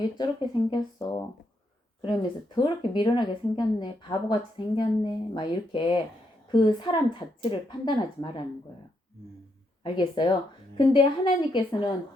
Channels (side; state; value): both; normal; correlation 0.79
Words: 저렇게 생겼어 그러면서 더럽게 미련하게 생겼네 바보같이 생겼네 막 이렇게 그 사람 자체를 판단하지 말라는 거예요. 알겠어요? 근데 하나님께서는